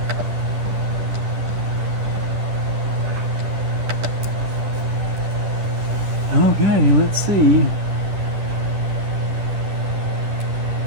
Okay, let's see.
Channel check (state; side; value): late; left; 11 ms